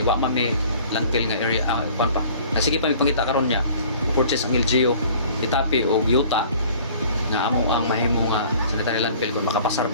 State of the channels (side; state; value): both; inverted; correlation -0.50